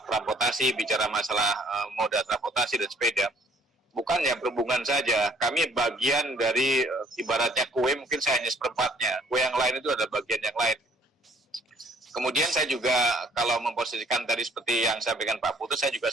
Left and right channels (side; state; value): both; normal; correlation 0.59